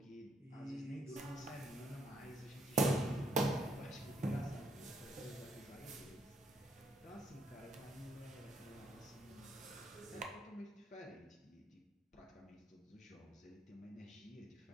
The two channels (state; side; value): normal; both; correlation 0.73